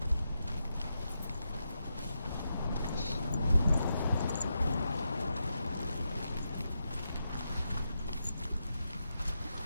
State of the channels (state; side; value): inverted; both; correlation -0.86